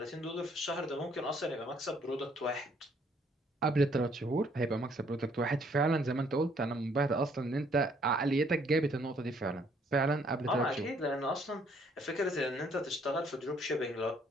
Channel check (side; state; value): both; normal; correlation 0.65